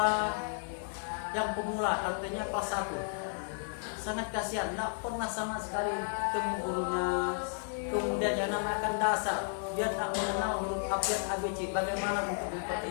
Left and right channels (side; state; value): right; silent; digital silence